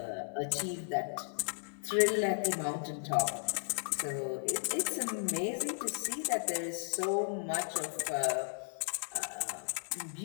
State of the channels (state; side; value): silent; right; digital silence